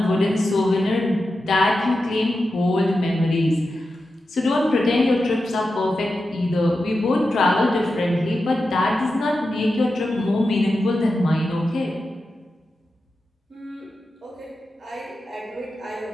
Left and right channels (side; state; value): both; normal; correlation 0.91